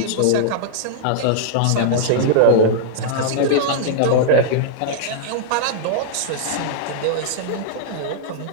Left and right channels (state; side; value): different; both; correlation -0.02